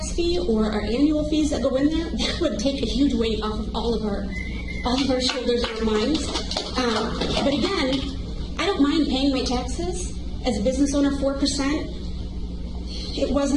fee or our annual fees that go in there, that would take a huge weight off of all of our shoulders and our minds. But again, I don't mind paying my taxes. As a business owner, 4%, it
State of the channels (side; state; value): both; identical; correlation 1.00